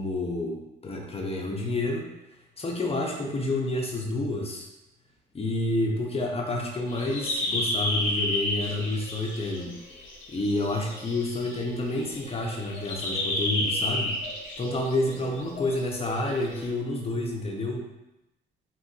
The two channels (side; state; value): both; normal; correlation 0.46